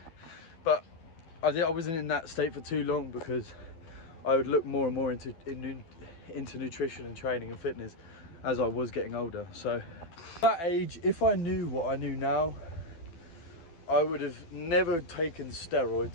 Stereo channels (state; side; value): late; right; 12 ms